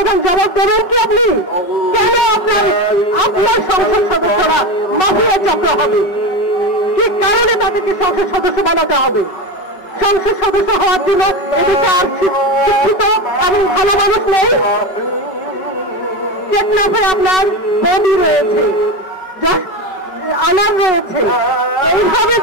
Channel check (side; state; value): right; late; 5.4 ms